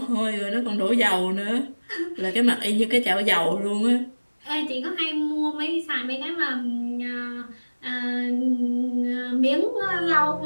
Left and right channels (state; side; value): inverted; both; correlation -1.00